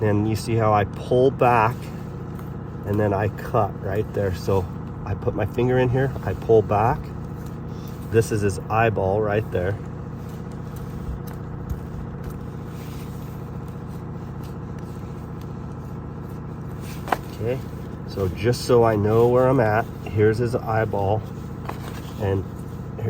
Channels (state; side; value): identical; both; correlation 1.00